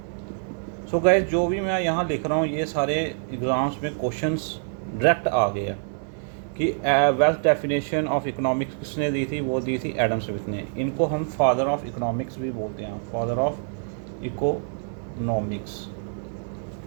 सो गाइस, जो भी मैं यहाँ लिख रहा हूँ ये सारे एग्ज़ाम्स में क्वेश्चंस डायरेक्ट आ गए हैं कि वेल्थ डेफिनेशन ऑफ इकोनॉमिक्स किसने दी थी, वो दी थी एडम स्मिथ ने। इनको हम फादर ऑफ इकोनॉमिक्स भी बोलते हैं, फादर ऑफ इकोनॉमिक्स।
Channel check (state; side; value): silent; left; digital silence